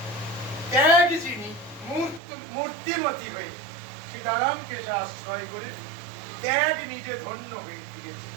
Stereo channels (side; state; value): left; drops out; at 2.2 s